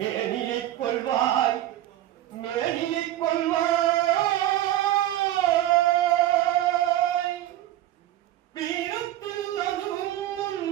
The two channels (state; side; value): quieter; left; 13.7 dB